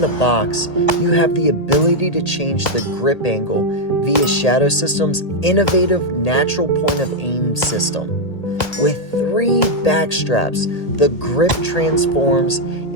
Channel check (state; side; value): late; right; 1.8 ms